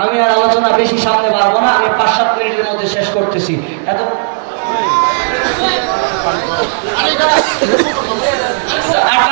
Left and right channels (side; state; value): left; silent; digital silence